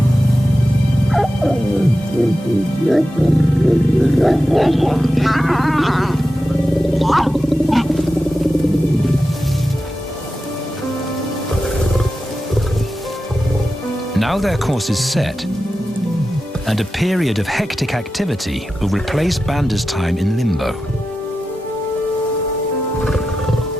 Now their course is set, and a period of hectic activity will replace Banda's time in limbo.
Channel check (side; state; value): both; normal; correlation 0.92